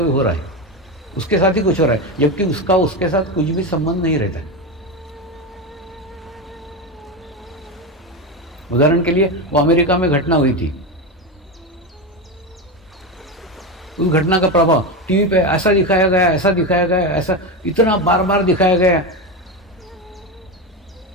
हो रहा है, उसके साथ ही कुछ हो रहा है, जबकि उसका उसके साथ कुछ भी संबंध नहीं रहता। उदाहरण के लिए वो अमेरिका में घटना हुई थी, उस घटना का प्रभाव टीवी पे ऐसा दिखाया गया, ऐसा दिखाया गया, ऐसा इतना बार बार दिखाया गया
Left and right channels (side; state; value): both; normal; correlation 0.16